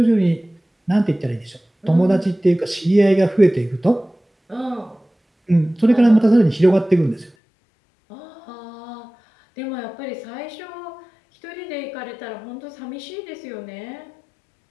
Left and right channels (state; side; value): drops out; right; at 7.4 s